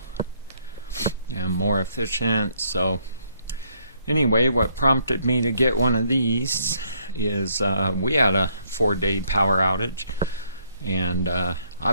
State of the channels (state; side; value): inverted; both; correlation -0.69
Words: and more efficient. So anyway, what prompted me to get one of these is we had a 4-day power outage, and